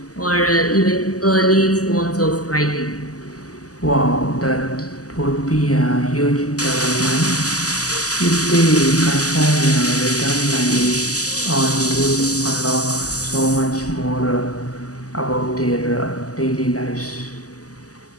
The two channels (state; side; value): late; right; 0.67 ms